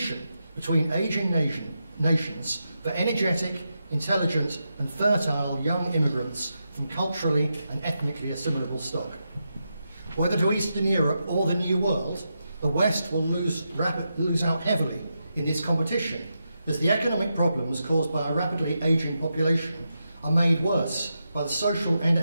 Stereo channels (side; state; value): both; inverted; correlation -0.86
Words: between ageing nations for energetic, intelligent and fertile young immigrants from culturally and ethnically assimilable stock. Whether to Eastern Europe or the New World, the West will lose out heavily in this competition, as the economic problems caused by a rapidly ageing population are made worse by the social